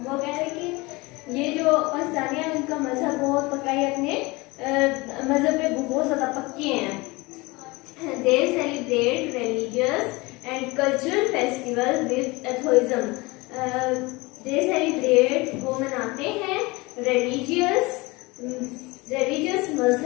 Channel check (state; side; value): quieter; right; 23.7 dB